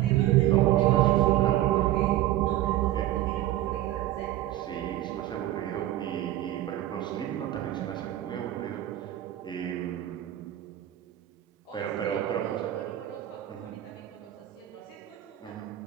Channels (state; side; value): quieter; left; 13.9 dB